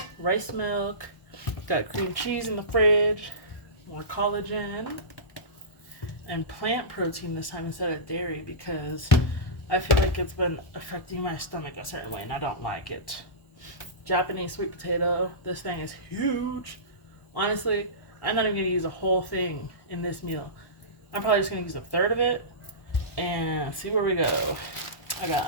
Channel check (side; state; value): right; late; 1.1 ms